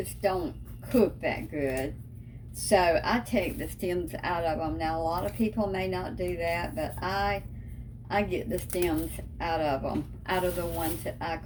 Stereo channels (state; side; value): identical; both; correlation 1.00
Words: don't cook that good. So I take the stems out of them. Now a lot of people may not do that, but I get the stems out of them, out of the ones that I